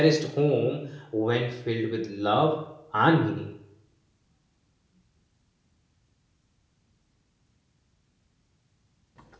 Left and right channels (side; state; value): both; identical; correlation 1.00